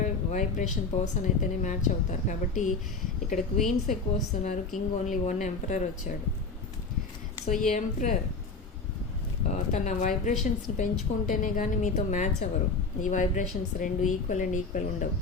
vibration person అయితేనే match అవుతారు. కాబట్టి ఇక్కడ క్వీన్స్ ఎక్కువ వస్తున్నారు, కింగ్ ఓన్లీ 1 ఎంపరర్ వచ్చాడు. సో ఈ ఎంపరర్ తన వైబ్రేషన్స్ని పెంచుకుంటేనే కానీ మీతో మ్యాచ్ అవ్వరు. ఈ వైబ్రేషన్స్ రెండు ఈక్వల్ అండ్ ఈక్వల్ ఉండవు.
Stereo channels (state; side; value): quieter; right; 4.1 dB